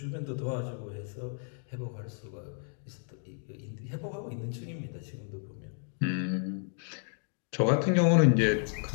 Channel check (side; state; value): right; silent; 56 dB below the other